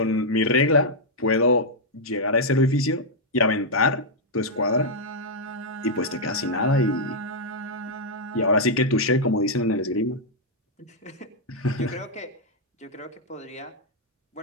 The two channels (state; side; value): normal; both; correlation -0.04